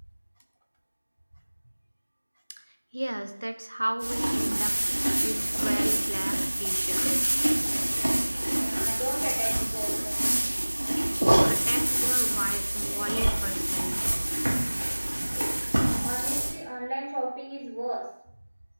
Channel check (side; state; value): both; inverted; correlation -1.00